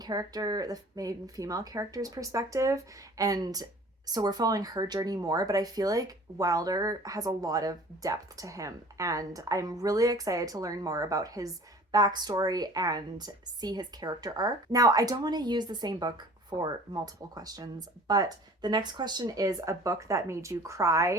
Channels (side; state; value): both; normal; correlation 0.47